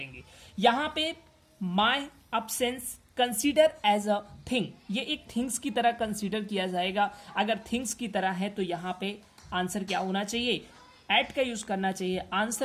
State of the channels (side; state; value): both; identical; correlation 1.00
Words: यहाँ पे my absence consider as a thing, ये एक थिंग्स की तरह कंसीडर किया जाएगा। अगर थिंग्स की तरह है तो यहाँ पे आंसर क्या होना चाहिए, एट का यूज करना चाहिए।